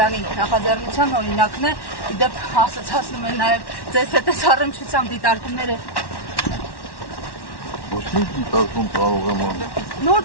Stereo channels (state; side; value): late; right; 1.1 ms